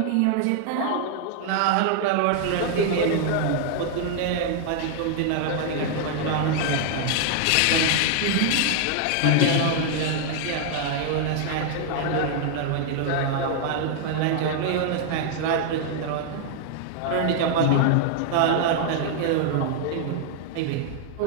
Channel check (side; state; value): both; different; correlation 0.00